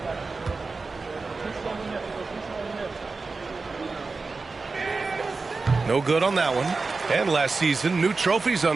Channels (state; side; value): quieter; left; 4.0 dB